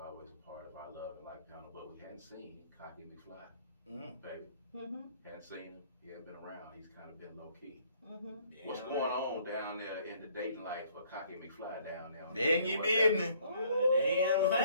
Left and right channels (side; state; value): both; inverted; correlation -0.61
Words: always a part of our Love and Life panel, but we hadn't seen Kanye McFly, baby. Hadn't seen him. He hadn't been around. He's kind of been low key. What's going on down there in the dating life for Kanye McFly down there? Then you business. Damn